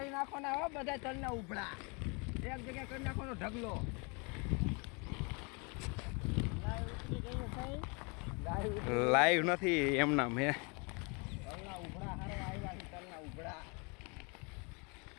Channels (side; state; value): right; quieter; 31.9 dB